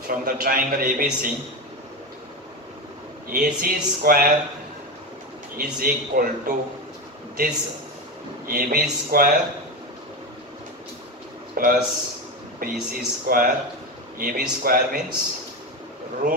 the triangle ABC, AC square is equal to this AB square plus BC square. AB square means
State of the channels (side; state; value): both; normal; correlation 0.19